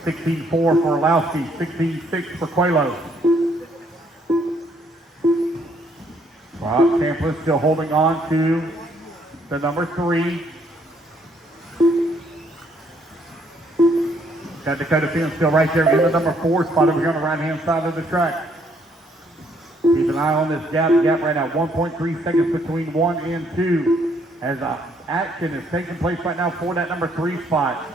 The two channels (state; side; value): normal; both; correlation 0.68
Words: 16.4 for Orlowski, 16.6 for Coelho. Broc Champlin still holding on to the number 3. Got Dakotah Phend still right there in the number 4 spot over here on the right-hand side of the track. Keep an eye on this gap right now, 1.3 seconds between 1 and 2. As action is taking place right now for that number 3 spot.